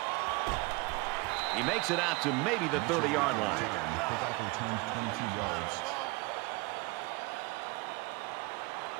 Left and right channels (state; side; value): quieter; left; 24.8 dB